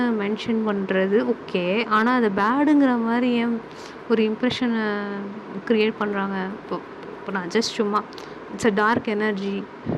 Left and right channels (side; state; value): both; identical; correlation 1.00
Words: மென்ஷன் பண்ணுறது ஓகே. ஆனால் அதை பேடுங்கிற மாதிரி ஏன் ஒரு இம்ப்ரெஷனை க்ரியேட் பண்ணுறாங்க. இப்போ இப்போ நான் ஜஸ்ட் சும்மா இட்ஸ் அ டார்க் எனர்ஜி